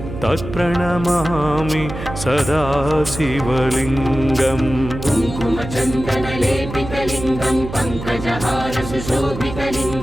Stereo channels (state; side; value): noise; right; hum, 9 dB below the sound